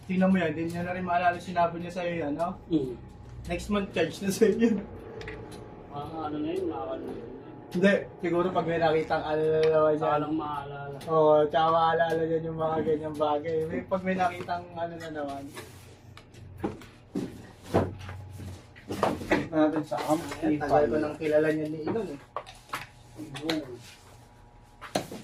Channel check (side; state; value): both; identical; correlation 1.00